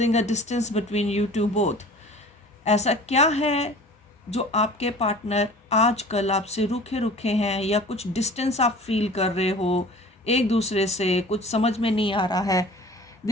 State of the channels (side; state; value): both; normal; correlation 0.44